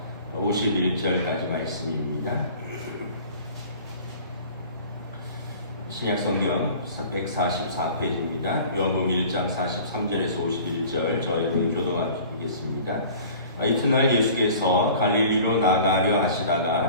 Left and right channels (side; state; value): both; inverted; correlation -0.45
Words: 51절까지 말씀입니다. 신약성경 144페이지입니다. 요한복음 1장 43절에서 51절 저희는 교독하겠습니다. 이튿날 예수께서 갈릴리로 나가려